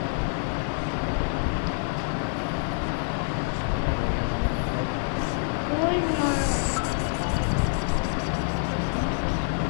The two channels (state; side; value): silent; right; 61 dB below the other